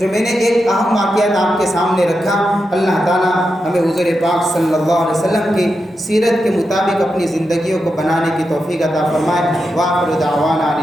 میں نے ایک اہم واقعات آپ کے سامنے رکھا۔ اللہ تعالیٰ ہمیں حضور پاک صلی اللہ علیہ وسلم کی سیرت کے مطابق اپنی زندگیوں کو بنانے کی توفیق عطا فرمائے۔ وآخر دعوانا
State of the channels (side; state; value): both; normal; correlation 0.87